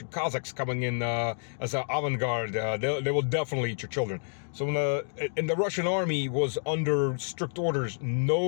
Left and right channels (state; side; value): silent; right; digital silence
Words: Cossacks coming in as an avant-garde. They will definitely eat your children. So when the Russian army was under strict orders,